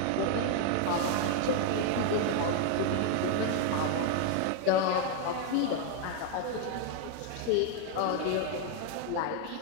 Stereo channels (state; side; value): different; both; correlation 0.01